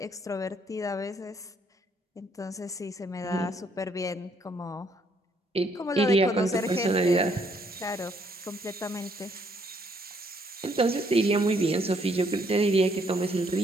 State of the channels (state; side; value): normal; both; correlation 0.68